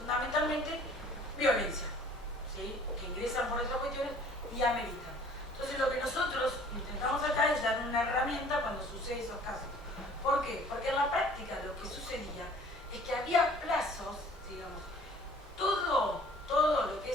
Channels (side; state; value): both; normal; correlation 0.52